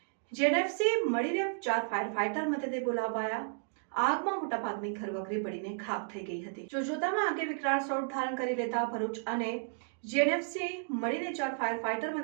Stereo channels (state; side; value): silent; left; digital silence